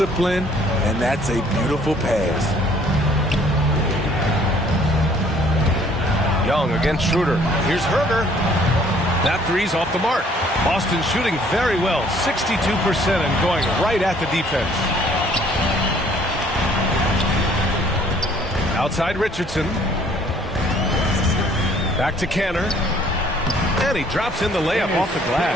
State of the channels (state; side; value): normal; both; correlation 0.59